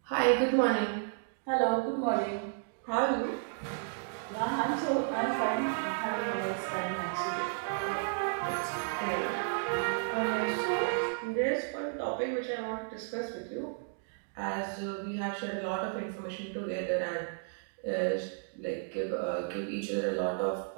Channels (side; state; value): left; silent; digital silence